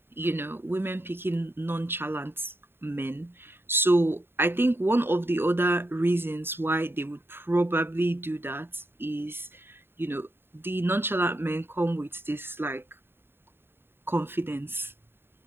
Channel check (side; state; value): left; late; 0.11 ms